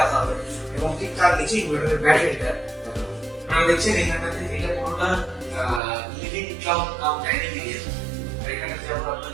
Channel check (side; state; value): left; drops out; at 5.8 s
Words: রাখা হবে এবং ঠিক তার নিচে ইনভার্টারের ব্যাটারিটা। আপনারা দেখছেন এখানটাতে এটা পুরোটা লিভিং কাম ডাইনিং এরিয়া। আর এখানটাতে যেমন